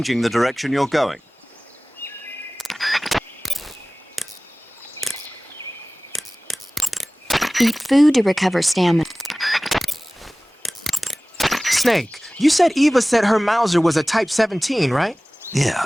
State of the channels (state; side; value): normal; both; correlation 0.98